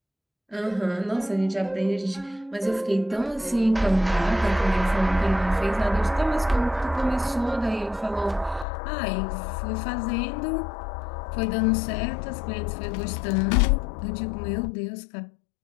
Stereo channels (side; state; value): right; drops out; at 8.7 s